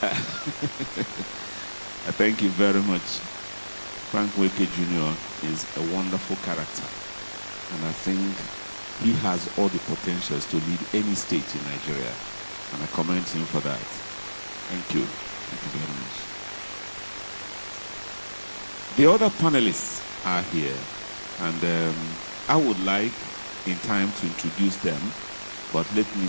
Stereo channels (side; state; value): both; inverted; correlation -1.00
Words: Thank you very much. Frank Nweke Jr. is a wonderful character, and I think he has all the potentials to lead any state in Nigeria, and I commend him for that. Thank you. Thank you very much. The other panelists are here, and I would like in time to introduce them, but let me